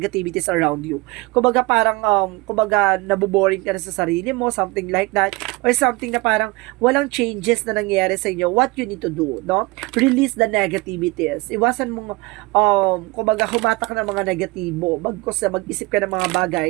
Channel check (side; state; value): left; quieter; 23.7 dB